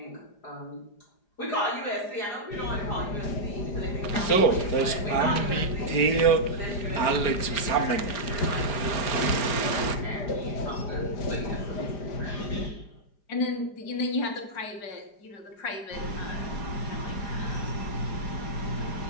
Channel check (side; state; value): right; late; 4.9 ms